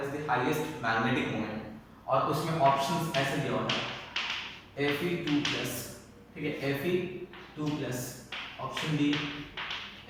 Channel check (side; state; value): both; identical; correlation 1.00